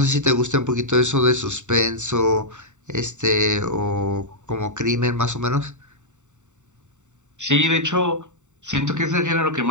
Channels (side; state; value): left; late; 0.84 ms